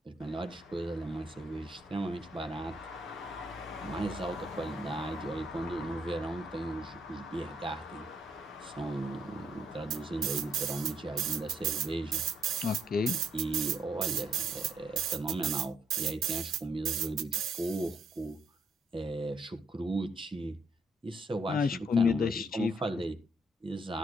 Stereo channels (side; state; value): both; normal; correlation 0.72